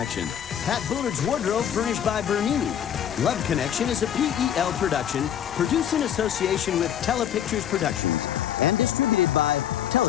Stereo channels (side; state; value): right; quieter; 9.7 dB